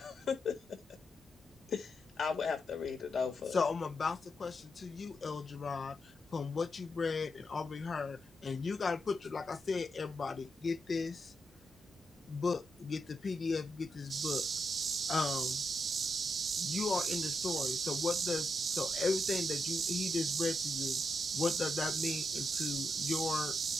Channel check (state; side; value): normal; both; correlation 0.83